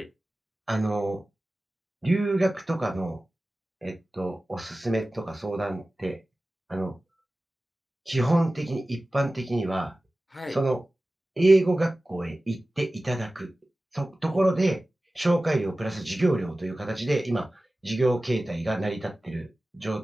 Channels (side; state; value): both; normal; correlation 0.96